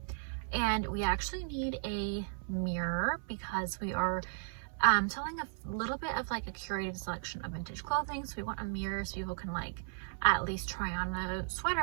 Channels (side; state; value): left; silent; 54 dB below the other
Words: And we actually need a mirror because we are selling a little bit of like a curated selection of vintage clothing. So we want a mirror so people can like at least try on a